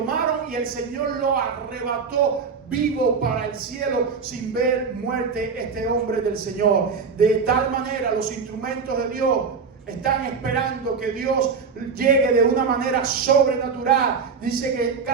y el Señor lo arrebató vivo para el cielo sin ver muerte este hombre del Señor. De tal manera los instrumentos de Dios están esperando que Dios llegue de una manera sobrenatural. Dice que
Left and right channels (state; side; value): quieter; left; 5.5 dB